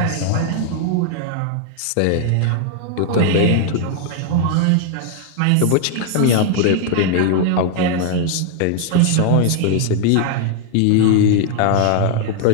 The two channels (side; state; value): both; different; correlation 0.00